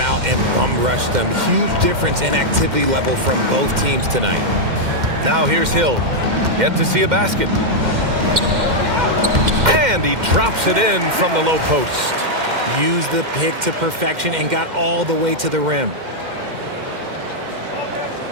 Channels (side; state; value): left; late; 2.1 ms